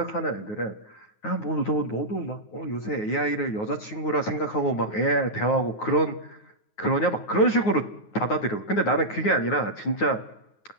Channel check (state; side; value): late; right; 9.5 ms